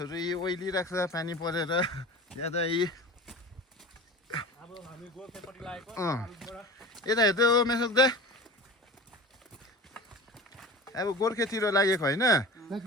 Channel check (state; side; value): normal; both; correlation 0.35